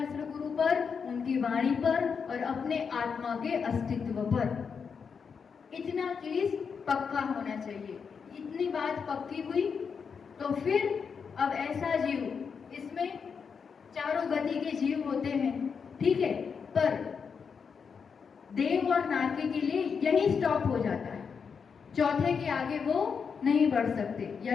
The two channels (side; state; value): right; quieter; 6.1 dB